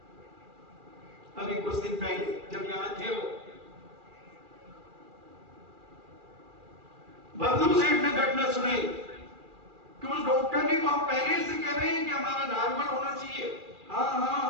अभी कुछ दिन पहले, जब यहां थे वो बर्दू सेठ ने घटना सुनाई कि उस डॉक्टर ने को हम पहले से कह रहे हैं कि हमारा नॉर्मल होना चाहिए, हाँ हाँ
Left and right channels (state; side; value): late; left; 2.4 ms